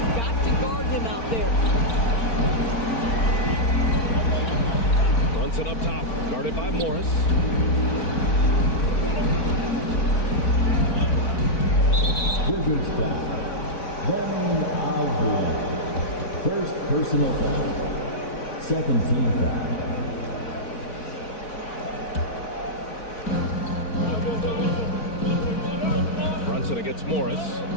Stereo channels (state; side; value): late; right; 4.4 ms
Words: got to guard him out there. Brunson up top, guarded by Morris. Wizards foul. Then Avdia. First personal foul. Second team foul. Brunson against Morris.